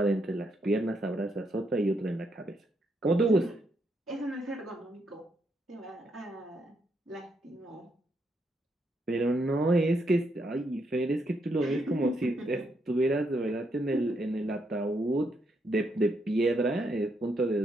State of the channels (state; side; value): normal; both; correlation 0.77